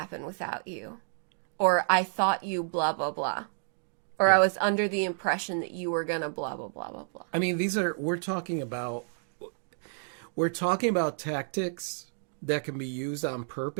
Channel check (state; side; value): silent; left; digital silence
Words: without you. Or I thought you blah, blah, blah. Or I was under the impression that you were going to blah, blah, blah, blah, blah. I mean, we're talking about tactics that can be used on